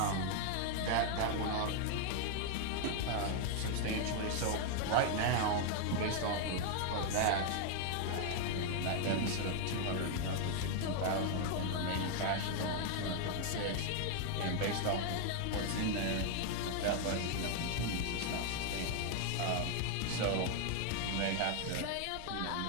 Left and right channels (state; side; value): different; both; correlation 0.00